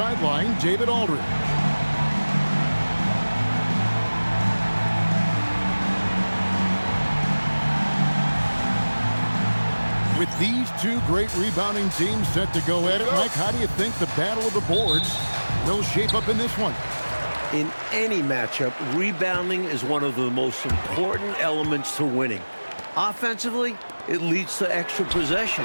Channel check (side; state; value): both; inverted; correlation -1.00